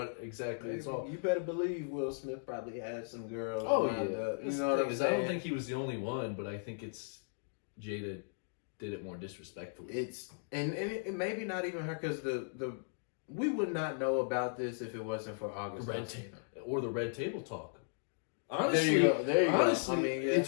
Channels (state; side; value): silent; right; digital silence